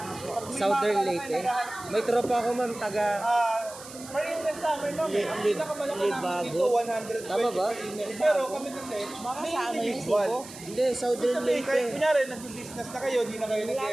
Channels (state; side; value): noise; right; hiss, 16 dB below the sound